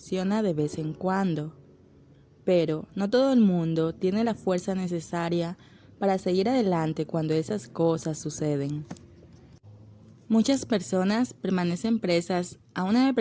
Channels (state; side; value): identical; both; correlation 1.00